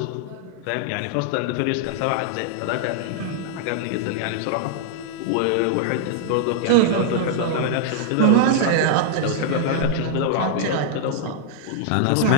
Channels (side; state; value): both; different; correlation -0.01